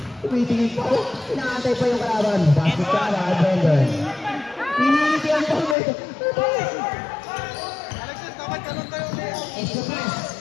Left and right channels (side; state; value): right; drops out; at 5.8 s